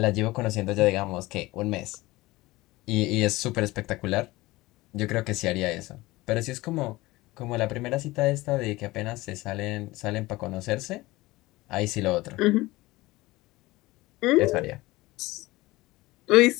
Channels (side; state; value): right; quieter; 19.8 dB